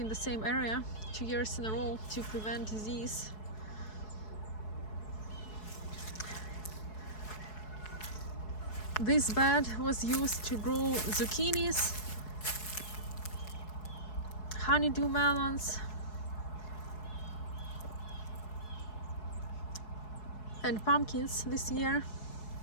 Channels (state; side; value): late; right; 4.7 ms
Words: the same area 2 years in a row to prevent disease. This bed was used to grow zucchinis, honeydew melons, and pumpkins this year.